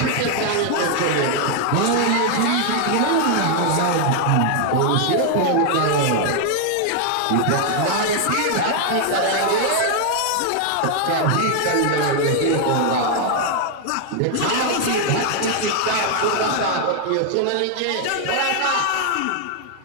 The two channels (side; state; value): both; different; correlation 0.00